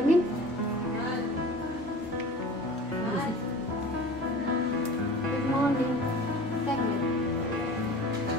Good morning. Segment.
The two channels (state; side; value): normal; both; correlation 0.39